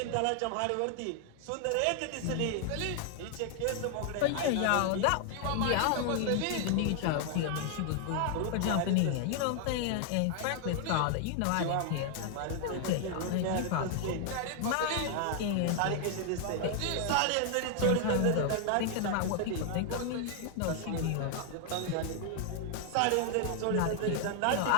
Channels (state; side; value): different; both; correlation 0.00